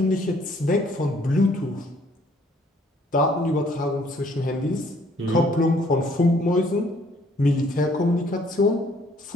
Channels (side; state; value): both; normal; correlation 0.62